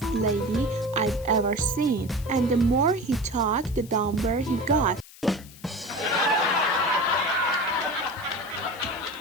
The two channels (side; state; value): left; noise; hiss, 20 dB below the sound